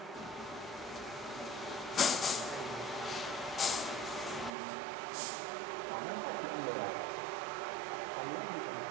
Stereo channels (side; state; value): left; drops out; at 4.5 s